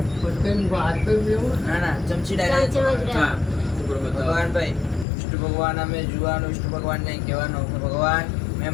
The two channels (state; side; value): drops out; right; at 5.1 s